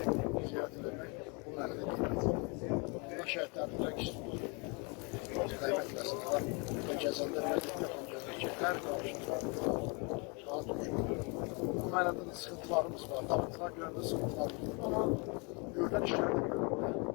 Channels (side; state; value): right; quieter; 32.0 dB